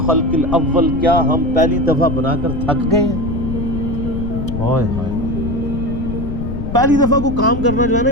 الاول، کیا ہم پہلی دفعہ بنا کر تھک گئے ہیں؟ ہائے ہائے، پہلی دفعہ کو کام کرنا جو ہے نا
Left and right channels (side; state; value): left; noise; rumble, 4 dB below the sound